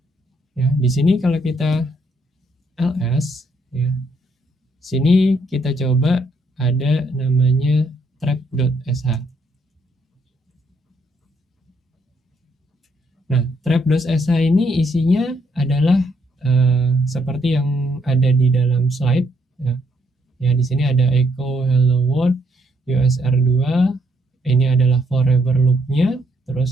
Ya, di sini kalau kita ls, ya, sini kita coba ada namanya trap.sh. Nah, trap.sh ini isinya adalah seperti yang ada di dalam slide, ya. Ya, di sini ada echo hello world USR2. Ini adalah forever loop-nya,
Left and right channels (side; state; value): both; normal; correlation 0.72